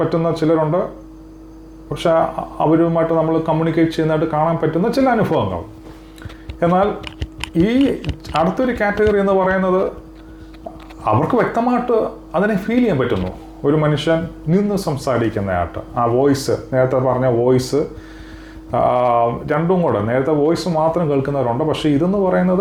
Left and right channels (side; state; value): both; identical; correlation 1.00